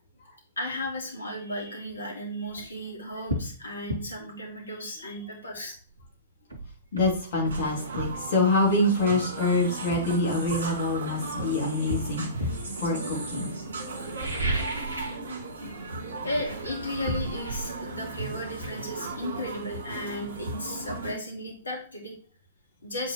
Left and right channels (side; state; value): both; inverted; correlation -0.35